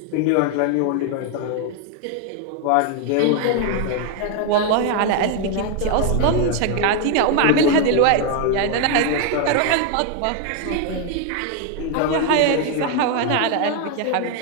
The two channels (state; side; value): different; both; correlation 0.01